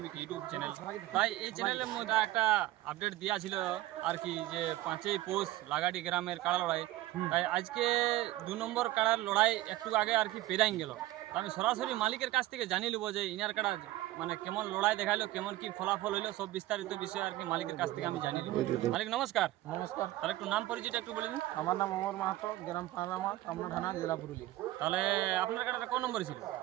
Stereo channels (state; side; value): quieter; left; 16.2 dB